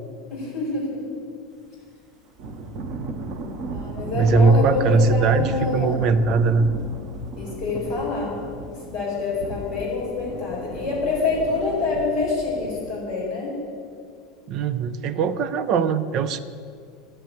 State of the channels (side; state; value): both; normal; correlation 0.40